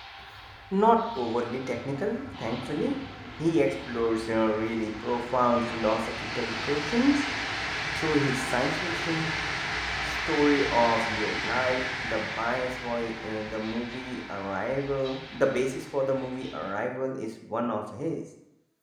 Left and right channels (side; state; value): both; identical; correlation 1.00